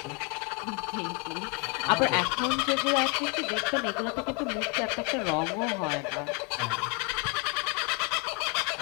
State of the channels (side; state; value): right; quieter; 30.6 dB